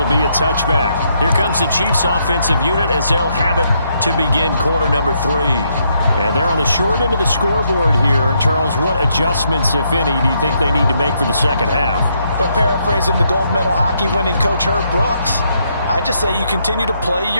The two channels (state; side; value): inverted; both; correlation -0.75